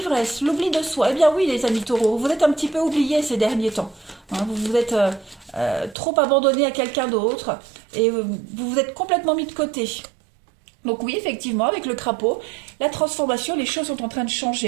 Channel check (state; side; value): drops out; left; at 6.0 s